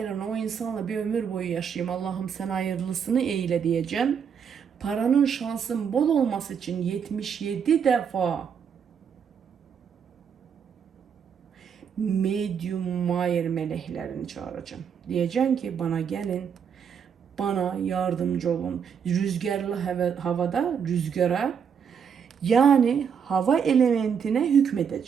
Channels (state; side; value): quieter; left; 7.2 dB